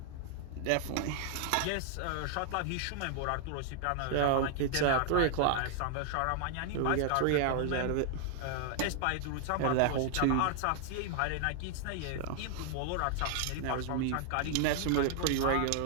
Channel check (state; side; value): different; both; correlation 0.00